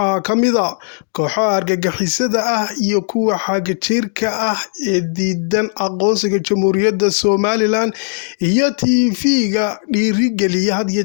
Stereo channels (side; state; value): right; silent; digital silence